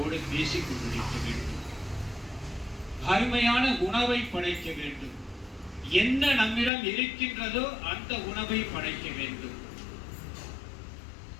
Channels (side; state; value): right; drops out; at 6.7 s